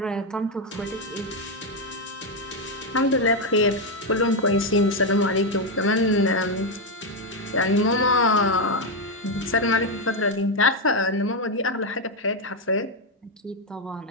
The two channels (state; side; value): normal; both; correlation 0.04